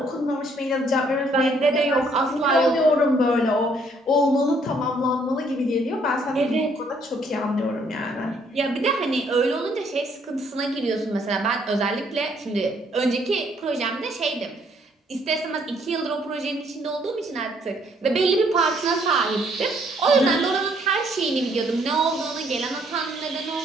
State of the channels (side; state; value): both; normal; correlation 0.66